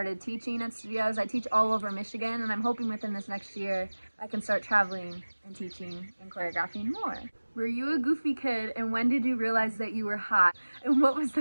teaching at studios. I teach all over Michigan, and I'm hoping within this next year I can start traveling and teaching and choreographing more. Were you a goofy kid, and when did you realize that you were hot? And what was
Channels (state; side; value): inverted; both; correlation -1.00